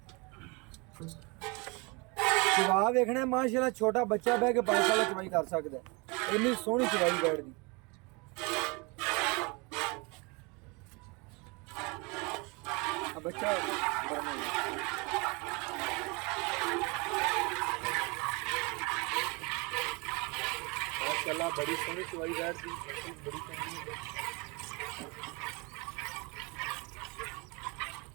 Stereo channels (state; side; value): quieter; left; 28.7 dB